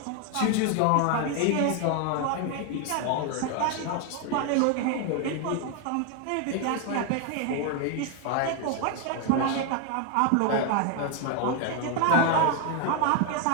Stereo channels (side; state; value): both; different; correlation 0.01